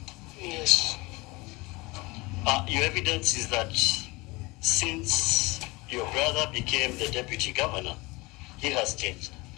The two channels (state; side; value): quieter; right; 23.8 dB